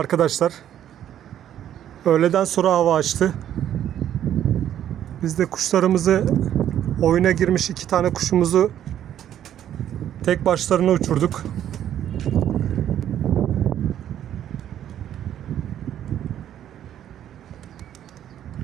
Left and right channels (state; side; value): quieter; left; 10.8 dB